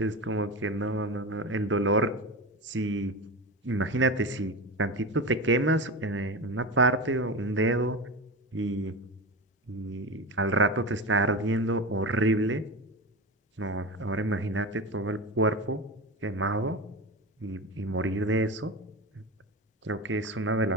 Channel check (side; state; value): both; normal; correlation 0.24